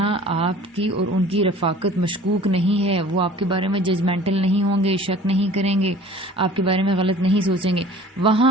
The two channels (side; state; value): both; normal; correlation 0.47